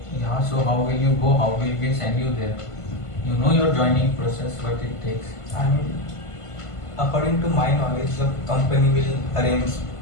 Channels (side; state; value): right; late; 1.5 ms